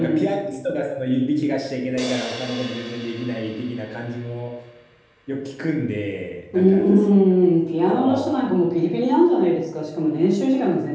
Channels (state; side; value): identical; both; correlation 1.00